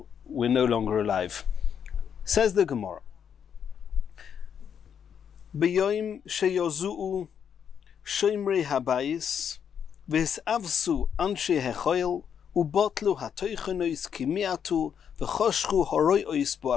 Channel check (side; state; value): right; quieter; 7.9 dB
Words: we're no longer alive. Says the Gemara, B'yoim sheyozu'u shoimrei habayis v'hisavsu anshe hechoil ubotlu hatoichenois kimiatu v'choshchu horoiois